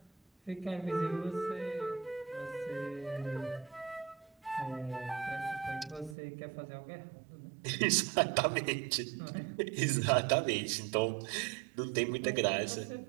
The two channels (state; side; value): drops out; left; at 6.2 s